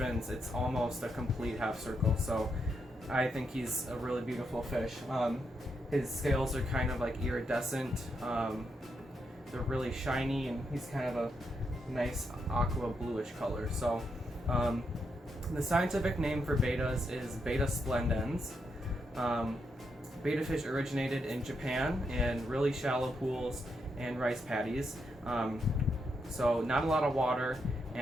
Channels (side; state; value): both; normal; correlation 0.81